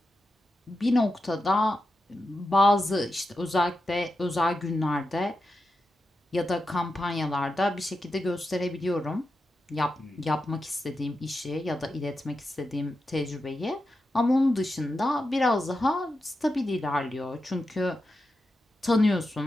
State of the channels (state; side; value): normal; both; correlation 0.89